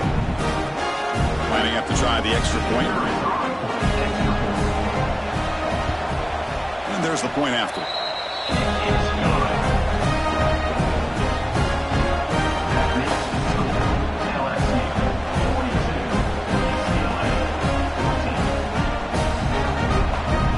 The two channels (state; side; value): identical; both; correlation 1.00